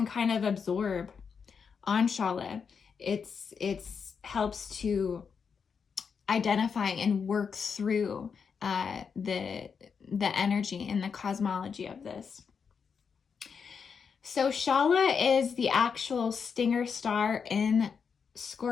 kind of absorb on Shala, it's helps to identify and work through the energy and the cosmology of this. So Shala is the actual stinger star in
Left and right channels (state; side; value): quieter; right; 6.2 dB